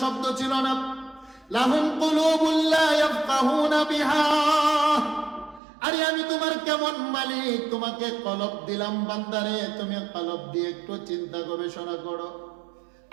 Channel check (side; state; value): left; drops out; at 5.6 s